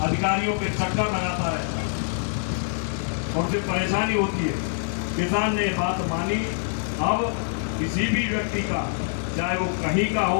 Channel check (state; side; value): silent; right; digital silence